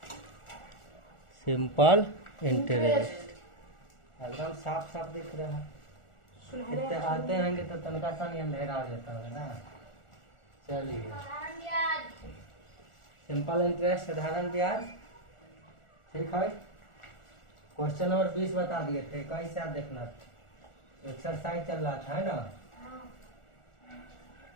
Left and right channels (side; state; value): right; late; 1.4 ms